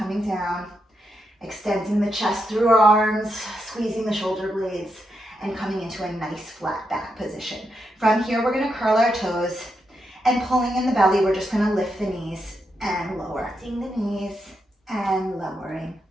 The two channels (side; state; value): both; normal; correlation 0.84